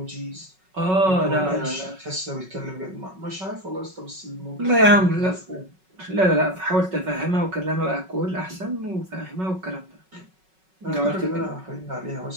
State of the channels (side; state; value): left; late; 5.4 ms